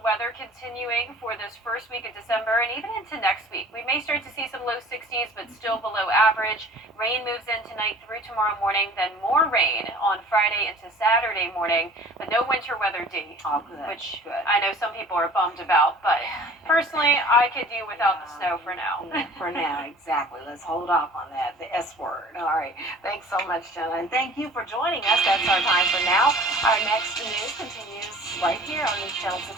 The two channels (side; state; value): both; normal; correlation 0.47